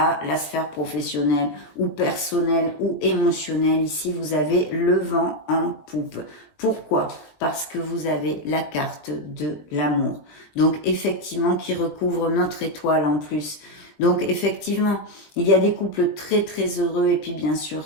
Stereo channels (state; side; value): late; right; 20 ms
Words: la sphère professionnelle ou personnelle ou émotionnelle. Ici, vous avez le vent en poupe. Pourquoi? Parce que vous avez la carte de l'amour. Donc, effectivement, qui recouvre notre étoile en plus. Donc, effectivement, il y a des couples très, très heureux et puis, bien sûr,